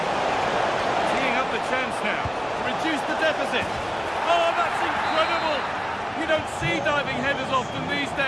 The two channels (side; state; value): both; identical; correlation 1.00